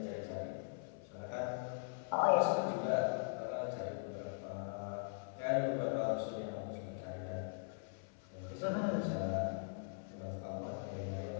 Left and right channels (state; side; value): silent; right; 51 dB below the other